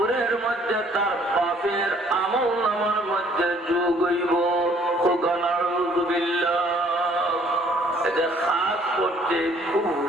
মধ্যে তার পাপের আমল নামার মধ্যে যোগ হইব। এটা খাস করতে খুব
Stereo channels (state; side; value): normal; both; correlation 0.60